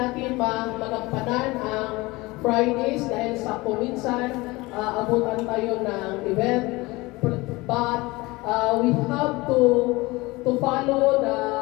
magampanan ang Fridays dahil sa kuminsan abutan tayo ng event, but we have to follow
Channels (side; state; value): right; quieter; 22.1 dB